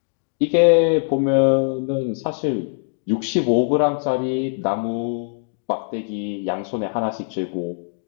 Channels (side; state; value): right; silent; digital silence